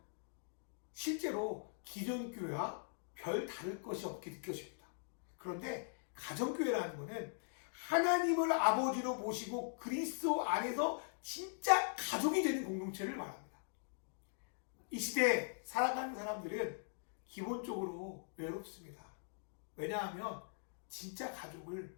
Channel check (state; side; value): silent; right; digital silence